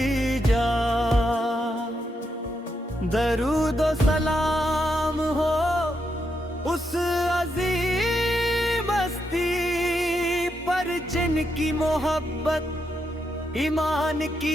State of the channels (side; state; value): both; normal; correlation 0.82